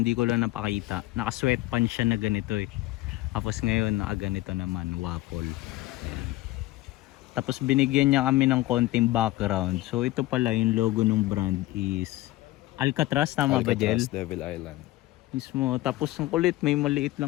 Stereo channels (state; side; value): quieter; right; 17.7 dB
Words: ko lang napakita. Naka-sweatpants siya na ganito eh. Tapos ngayon, naka-ganito naman, waffle. Yan. Tapos binigyan niya kami ng konting background. So ito pala yung logo ng brand is Alcatraz, tama ba, Jel? Devil Island. Mismo. Tapos ang kulit, may maliit